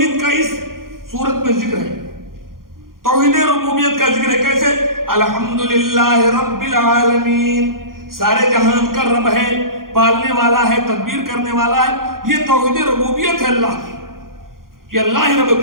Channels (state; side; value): late; left; 0.91 ms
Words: کا اس صورت میں ذکر ہے. توحید ربوبیت کا ذکر ہے کیسے؟ الحمدللہ رب العالمین، سارے جہان کا رب ہے، پالنے والا ہے، تدبیر کرنے والا ہے. یہ توحید ربوبیت ہے اللہ کی، کہ اللہ ہی رب،